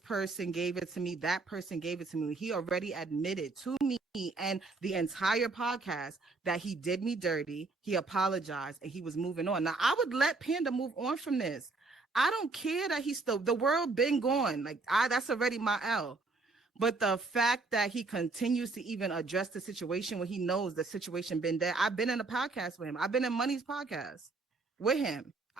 gave it to me, that person gave it to me. He already admitted to me and the entire podcast that he did me dirty. He apologized and he was moving on. Now, I would let Panda move on from this. I don't care that he's still, the world been gone. Like, that's already my L. But the fact that he continues to even address the situation when he knows the situation been there. I've been in a podcast with him. I've been in Money's podcast with him.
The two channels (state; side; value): quieter; left; 3.7 dB